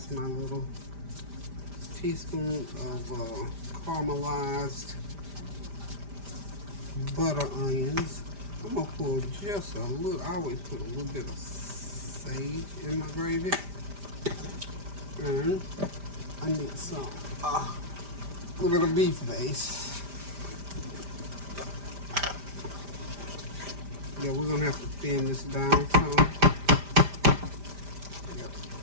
my little teaspoon of caramelized butter onions. I'm going to pour just a little, I always put a little bit of sage in my gravy. And I need some, a little bit of beef base. Yeah, we're gonna have to thin this down some. Yep.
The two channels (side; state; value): left; late; 5.0 ms